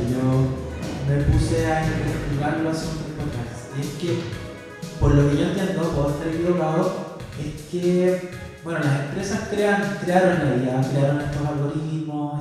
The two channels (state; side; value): identical; both; correlation 1.00